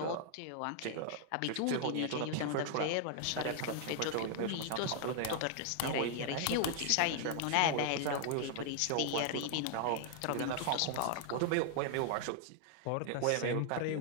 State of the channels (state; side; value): different; both; correlation 0.00